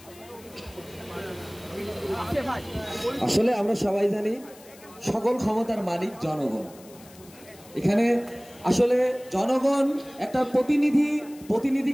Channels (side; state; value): left; noise; hiss, 23 dB below the sound